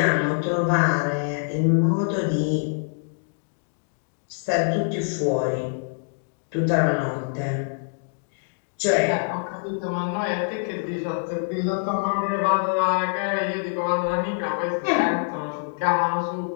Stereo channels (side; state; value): right; silent; digital silence